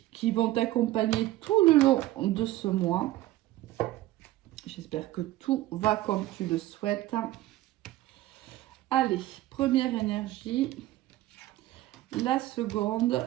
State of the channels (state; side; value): quieter; left; 15.8 dB